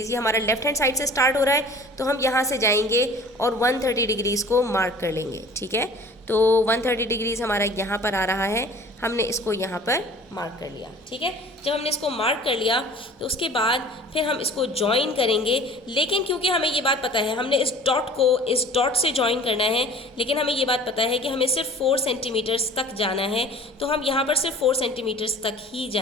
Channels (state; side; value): normal; both; correlation 0.46